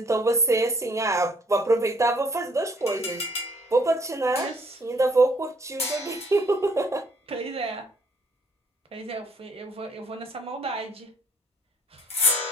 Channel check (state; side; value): normal; both; correlation 0.63